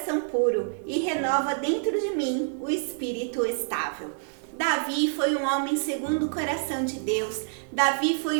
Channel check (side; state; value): left; silent; digital silence